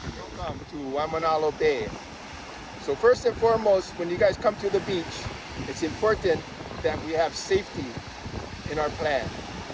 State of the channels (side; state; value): both; identical; correlation 1.00